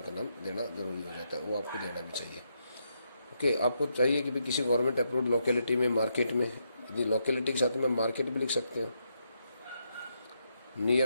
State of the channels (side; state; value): both; inverted; correlation -0.80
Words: का नाम देना ज़रूरी हो जाता है, वो आपको देना भी चाहिए. ओके, आपको चाहिए कि भाई किसी गवर्नमेंट अप्रूव्ड लोकेलिटी में, मार्केट में, यदि लोकेलिटी के साथ में मार्केट भी लिख सकते हो.